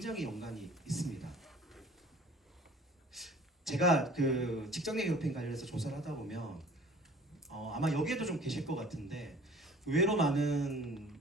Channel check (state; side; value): normal; both; correlation 0.49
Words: 연관이 있습니다. 제가 그 직장 내 괴롭힘 관련해서 조사를 하다 보면 아마 여기에도 좀 계실 것 같은데 의외로 많은